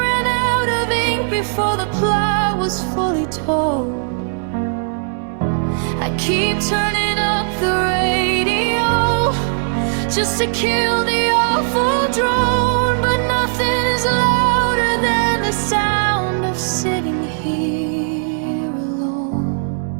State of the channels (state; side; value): silent; left; digital silence